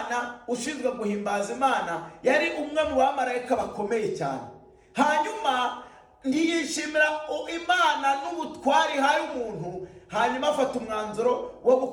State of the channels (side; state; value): both; identical; correlation 1.00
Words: ushinzwe guhimbaza Imana. Yari umwe mu bamarayika bakomeye cyane. Hanyuma ntiyishimira Imana n'ubutwari hari umuntu, hanyuma afata umwanzuro wo